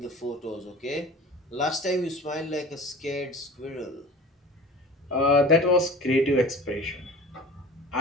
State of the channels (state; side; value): normal; both; correlation 0.40